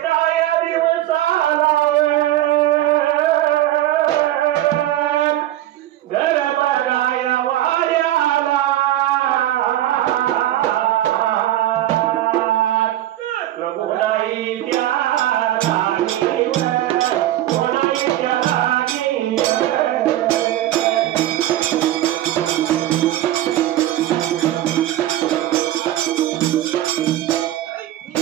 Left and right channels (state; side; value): quieter; left; 13.8 dB